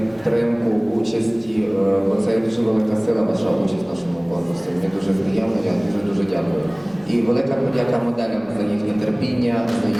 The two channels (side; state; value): left; noise; rumble, 29 dB below the sound